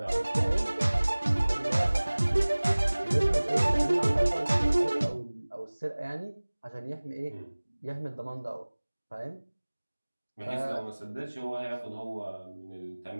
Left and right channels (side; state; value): both; inverted; correlation -1.00